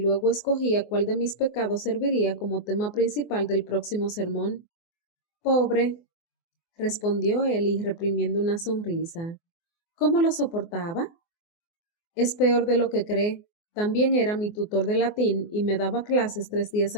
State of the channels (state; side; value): late; right; 24 ms